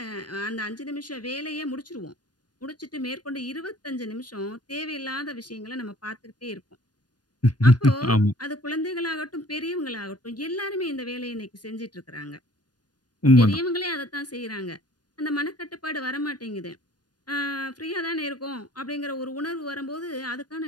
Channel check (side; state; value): right; late; 0.69 ms